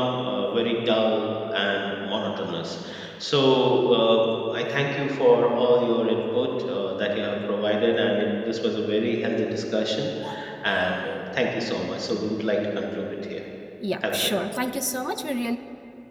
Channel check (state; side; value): identical; both; correlation 1.00